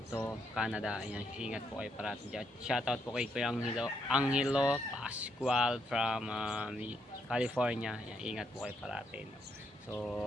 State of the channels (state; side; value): normal; both; correlation 0.77